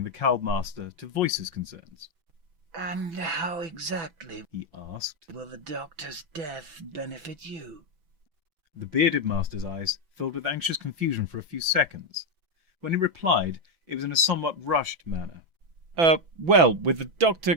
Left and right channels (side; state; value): left; late; 6.0 ms